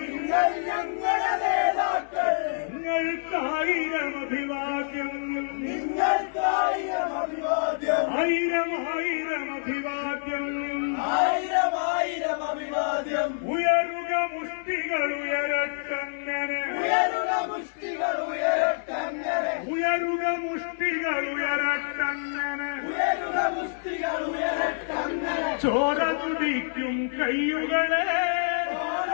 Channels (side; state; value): right; silent; 60 dB below the other